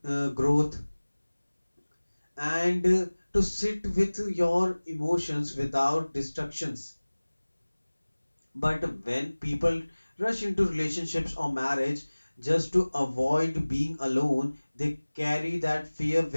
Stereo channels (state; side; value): inverted; both; correlation -1.00